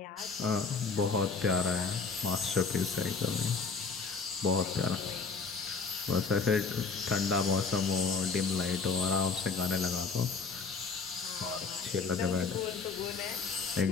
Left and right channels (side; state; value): right; quieter; 4.8 dB